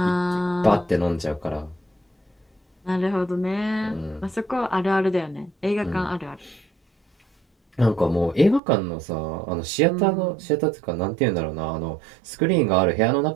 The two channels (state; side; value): drops out; left; at 8.6 s